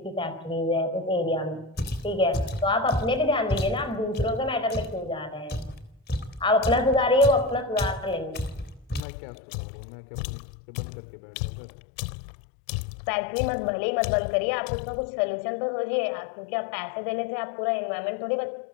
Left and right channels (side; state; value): right; drops out; at 9.0 s